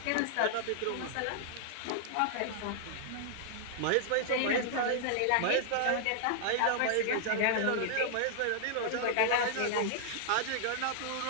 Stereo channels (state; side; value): different; both; correlation -0.01